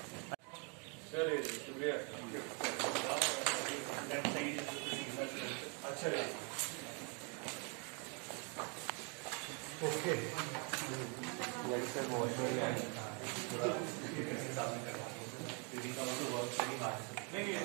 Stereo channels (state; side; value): quieter; left; 35.7 dB